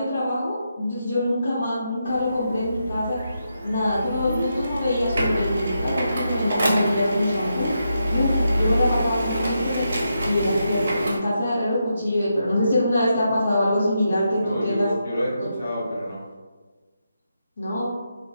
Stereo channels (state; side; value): inverted; both; correlation -0.84